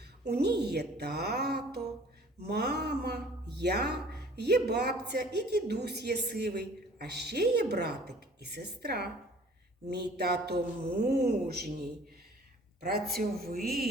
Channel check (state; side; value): normal; both; correlation 0.51